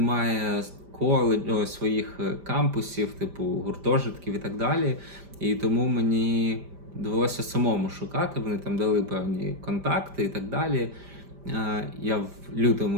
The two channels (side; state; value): left; late; 5.0 ms